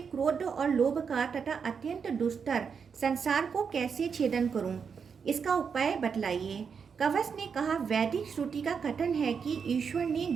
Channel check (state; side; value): quieter; left; 6.3 dB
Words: और लोभ का तथा अत्यंत दुस्तर संसार को कैसे छेदन करूं? इसका उपाय बतलाइए। कवच ने कहा, वैदिक श्रुति का कथन है कि ईश्वर ने